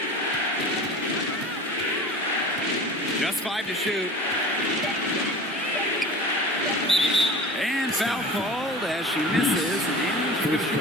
Just 5 to shoot. And foul called as she misses. And First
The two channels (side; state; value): both; normal; correlation 0.38